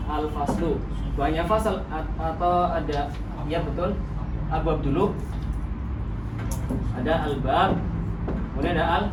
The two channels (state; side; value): identical; both; correlation 1.00